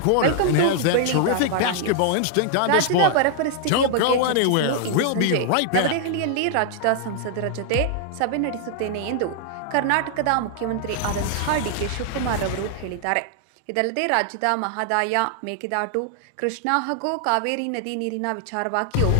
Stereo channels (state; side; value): different; both; correlation 0.00